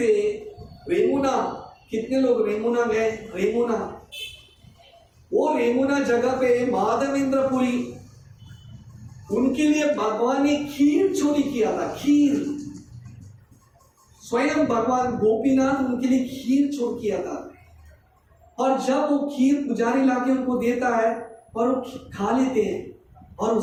रेमुना, कितने लोग रेमुना गए? रेमुना, वो रेमुना जगह पे माधवेंद्रपुरी, उनके लिए भगवान ने खीर चोरी किया था। खीर, स्वयं भगवान गोपीनाथ उनके लिए खीर चोर किया था। और जब वो खीर पुजारी लाके उनको देता है और वो खा लेते हैं, और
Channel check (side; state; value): both; identical; correlation 1.00